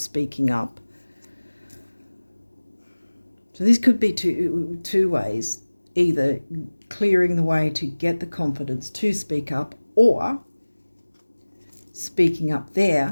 up. So this could be two ways, either clearing the way to get the confidence to speak up, or speaking up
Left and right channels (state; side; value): inverted; both; correlation -1.00